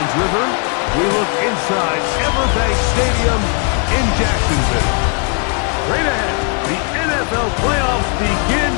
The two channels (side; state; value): right; quieter; 38.1 dB